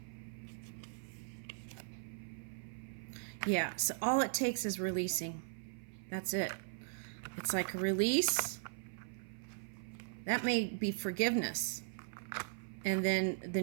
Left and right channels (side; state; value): left; silent; 52 dB below the other